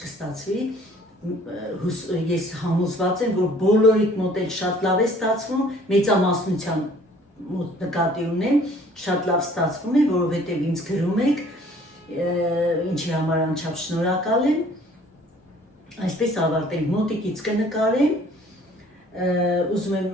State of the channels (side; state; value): both; normal; correlation 0.55